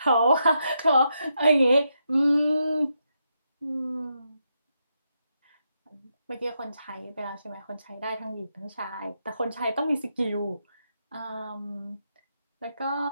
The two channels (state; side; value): inverted; both; correlation -0.82